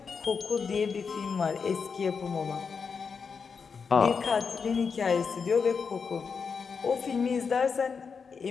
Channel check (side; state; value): right; quieter; 5.7 dB